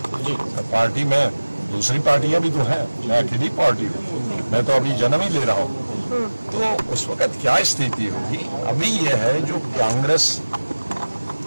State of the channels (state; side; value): inverted; both; correlation -1.00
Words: जी, पार्टी में दूसरी पार्टियां भी तो हैं, मैं अकेली पार्टी हूँ, मैं तो अभी जन्म ही ले रहा हूँ। तो उस वक्त क्या स्थिति होगी? अभी यह है जो कांग्रेस,